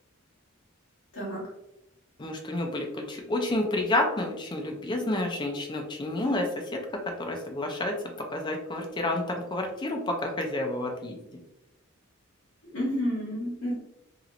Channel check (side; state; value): both; normal; correlation 0.44